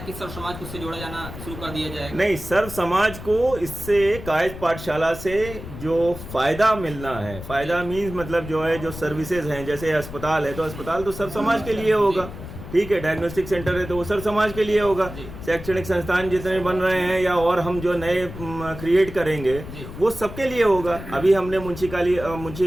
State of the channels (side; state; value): left; noise; rumble, 11 dB below the sound